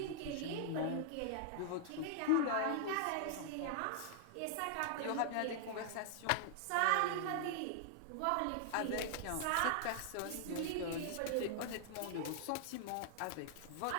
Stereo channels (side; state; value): both; different; correlation -0.01